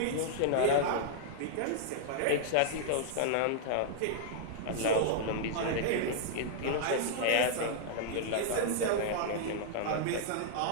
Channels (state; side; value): different; both; correlation -0.01